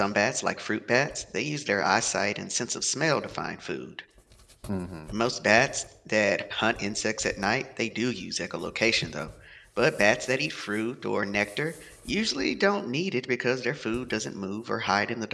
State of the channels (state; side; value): identical; both; correlation 1.00